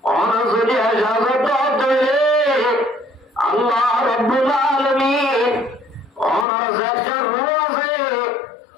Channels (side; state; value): right; drops out; at 6.5 s